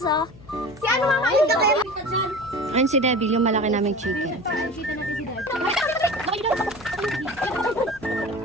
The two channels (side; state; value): left; noise; hum, 21 dB below the sound